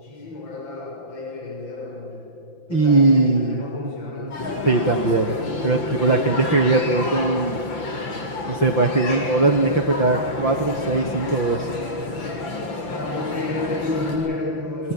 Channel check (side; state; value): right; late; 5.9 ms